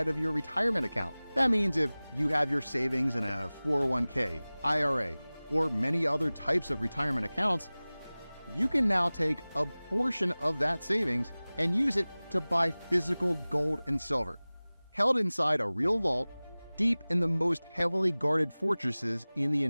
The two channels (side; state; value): both; inverted; correlation -0.99